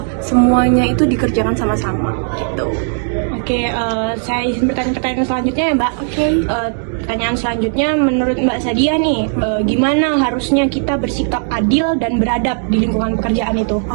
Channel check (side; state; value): left; silent; 60 dB below the other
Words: semuanya itu dikerjakan sama-sama gitu. Oke, saya izin bertanya pertanyaan selanjutnya ya Mbak. Pertanyaan selanjutnya menurut Mbak Sadia nih, gimana harusnya kita bersikap adil dan beradab di lingkungan pekerjaan itu?